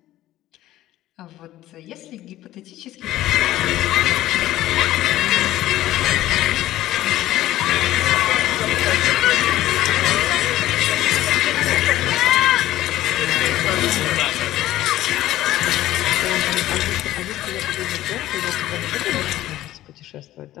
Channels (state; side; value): quieter; right; 14.6 dB